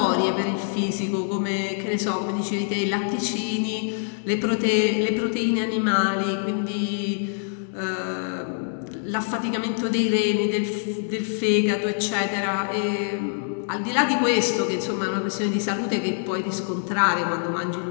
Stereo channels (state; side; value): silent; right; 62 dB below the other